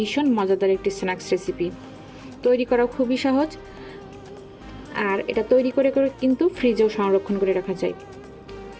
মজাদার একটি স্ন্যাক্স রেসিপি। তৈরি করা খুবই সহজ, আর এটা তৈরি করে কিন্তু ফ্রিজেও সংরক্ষণ করে রাখা যায়।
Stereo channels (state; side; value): identical; both; correlation 1.00